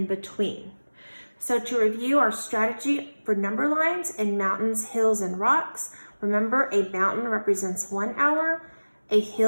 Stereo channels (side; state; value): both; inverted; correlation -1.00